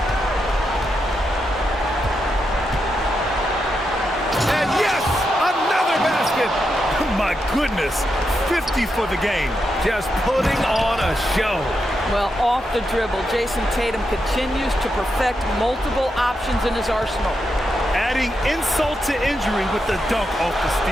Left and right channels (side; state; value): both; normal; correlation 0.85